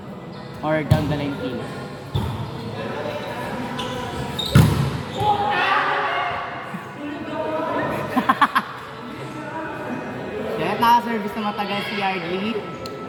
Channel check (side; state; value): both; identical; correlation 1.00